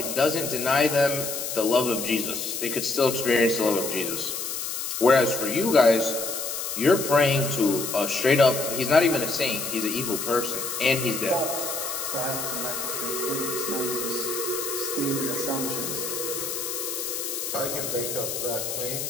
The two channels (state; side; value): noise; left; hiss, 4 dB below the sound